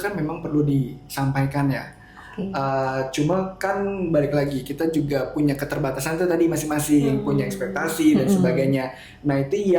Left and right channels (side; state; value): both; identical; correlation 1.00